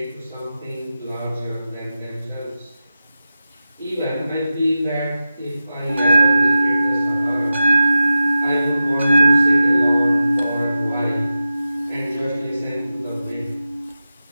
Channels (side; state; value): both; inverted; correlation -0.91